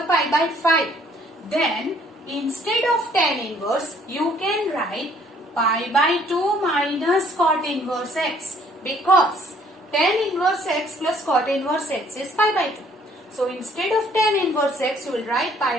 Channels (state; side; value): normal; both; correlation 0.61